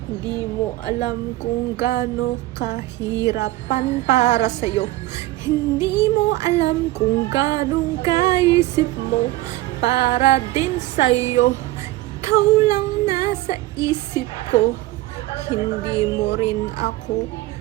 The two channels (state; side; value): quieter; left; 17.1 dB